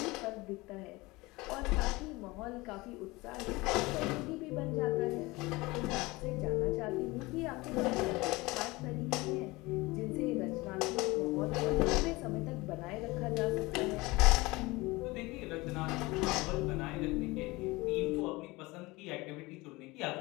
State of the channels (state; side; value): quieter; right; 22.3 dB